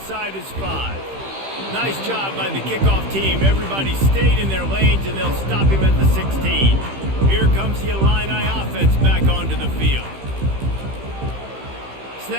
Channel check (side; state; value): left; late; 15 ms